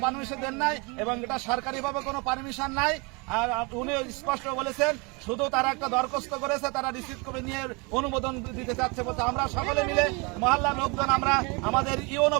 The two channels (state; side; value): quieter; left; 29.6 dB